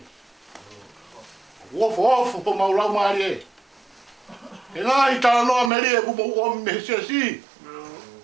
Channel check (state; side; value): drops out; left; at 5.7 s